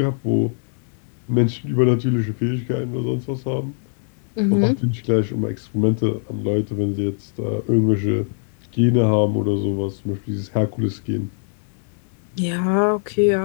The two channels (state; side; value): silent; right; digital silence